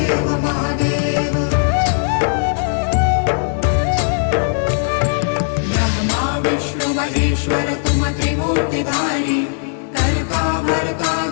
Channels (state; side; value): silent; right; 67 dB below the other